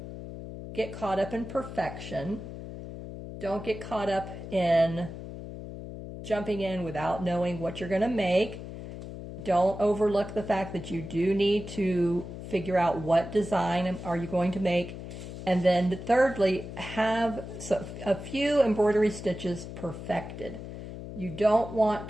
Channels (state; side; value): noise; left; hum, 10 dB below the sound